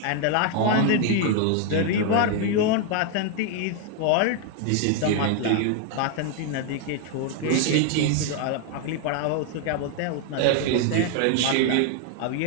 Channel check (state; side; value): different; both; correlation 0.00